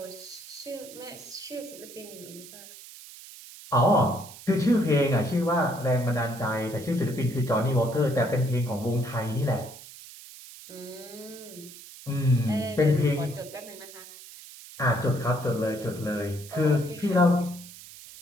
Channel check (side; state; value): right; noise; hiss, 17 dB below the sound